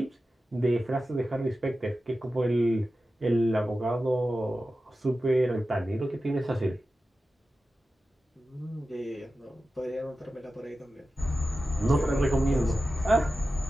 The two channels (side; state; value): both; normal; correlation 0.93